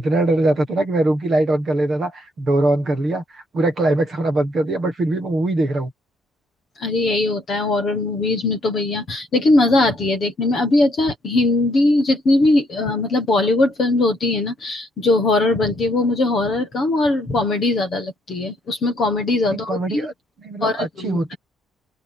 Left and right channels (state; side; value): normal; both; correlation 0.71